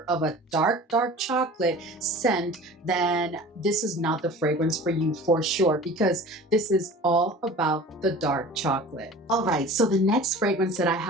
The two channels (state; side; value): normal; both; correlation 0.40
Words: of a dark, dark chocolate scent, then this is not the fragrance for you for sure, because this is all about the dark chocolate. All right, so the next fragrance that I